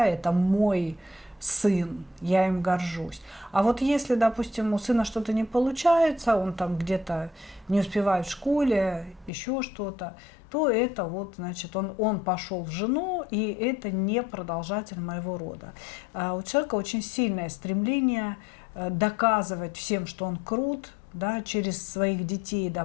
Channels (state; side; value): drops out; right; at 9.3 s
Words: это мой сын, я им горжусь. А вот если, допустим, у сына что-то не получается, он там где-то не успевает в школе, еще что-то, то это вот, значит, он пошел в жену, и это не продолжатель моего рода. У человека очень сильное стремление доказывать всем, что он крут, да, через своих детей,